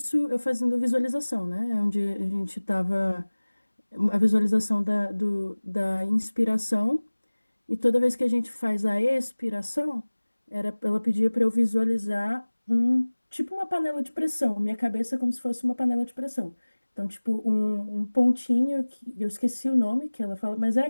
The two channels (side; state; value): both; inverted; correlation -1.00